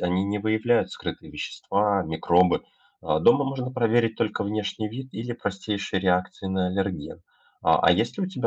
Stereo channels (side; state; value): both; identical; correlation 1.00